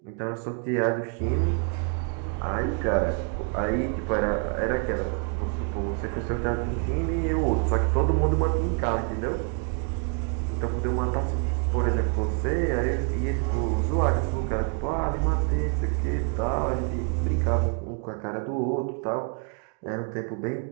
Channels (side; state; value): left; quieter; 39.5 dB